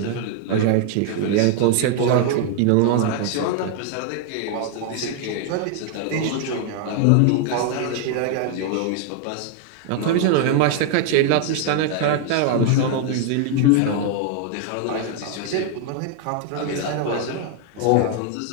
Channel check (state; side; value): different; both; correlation 0.00